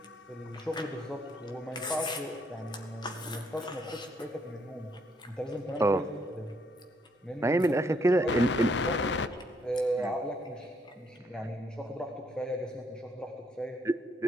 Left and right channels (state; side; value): normal; both; correlation 0.71